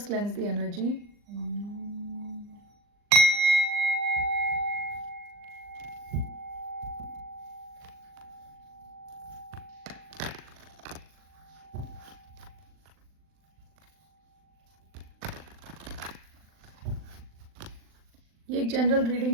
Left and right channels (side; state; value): left; late; 39 ms